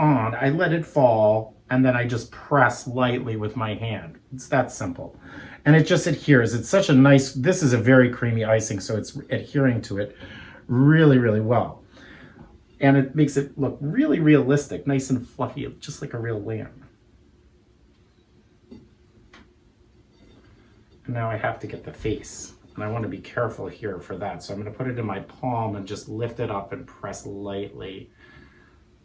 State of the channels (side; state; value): both; identical; correlation 1.00